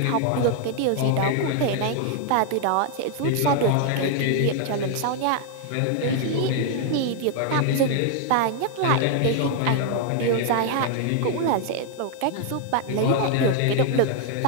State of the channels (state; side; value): different; both; correlation 0.00